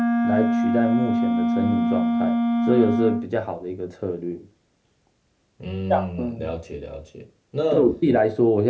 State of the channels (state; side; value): identical; both; correlation 1.00